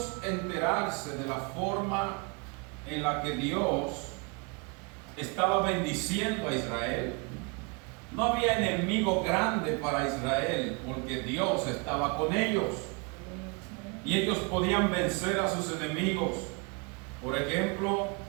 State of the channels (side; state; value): left; quieter; 31.6 dB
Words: enterarse de la forma en la que Dios estaba bendiciendo a Israel, no había enemigo grande para Israel porque Dios estaba con ellos y ellos podían vencer a sus enemigos. Por ejemplo,